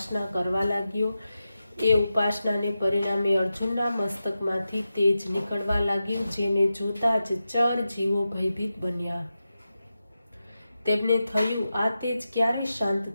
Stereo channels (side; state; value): both; inverted; correlation -0.91